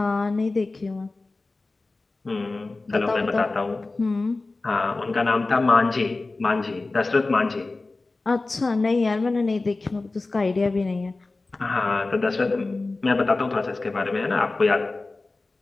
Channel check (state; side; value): quieter; right; 3.4 dB